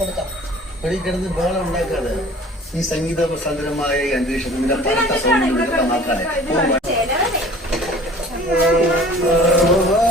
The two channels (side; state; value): both; normal; correlation 0.47